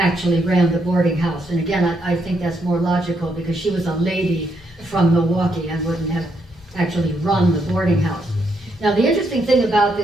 ran the boarding house. And again, I think that's more logical because she was a lady from Milwaukee and wouldn't have actually run the boarding house. Now, the interesting thing about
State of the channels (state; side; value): normal; both; correlation 0.77